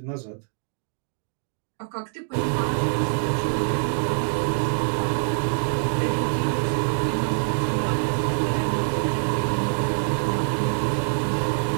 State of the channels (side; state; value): left; silent; digital silence